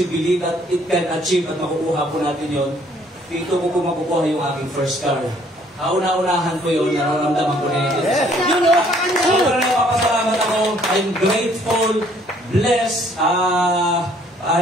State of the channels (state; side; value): normal; both; correlation 0.62